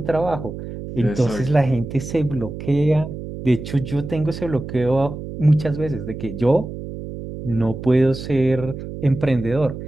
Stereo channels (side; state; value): right; noise; hum, 9 dB below the sound